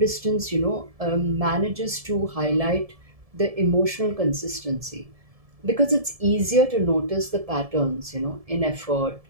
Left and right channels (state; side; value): late; left; 1.7 ms